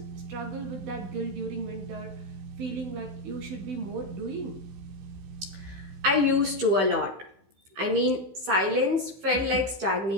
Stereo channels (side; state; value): left; late; 15 ms